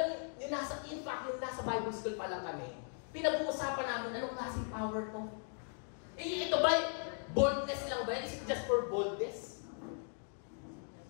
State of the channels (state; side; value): silent; right; 52 dB below the other